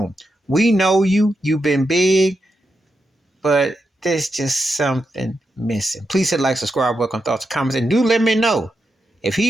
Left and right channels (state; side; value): normal; both; correlation 0.86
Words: We know you've been big, but there's just something missing. Please hit like, subscribe, welcome thoughts, comments, and do let me know if